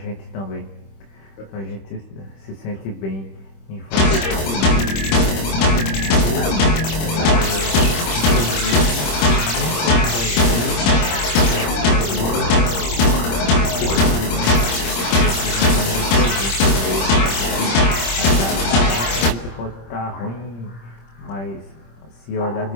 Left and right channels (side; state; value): right; late; 26 ms